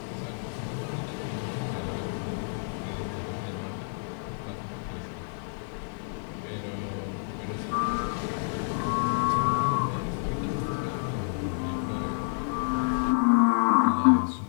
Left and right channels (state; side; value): silent; right; digital silence